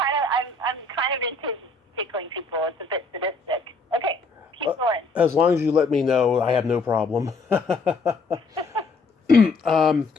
of into tickling people. It's a bit sadistic. Okay, keep going. As long as you let me know, I have no problem. Hold on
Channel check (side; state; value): right; quieter; 3.6 dB